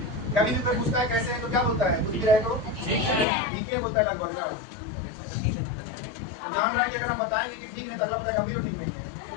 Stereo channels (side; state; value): right; drops out; at 3.2 s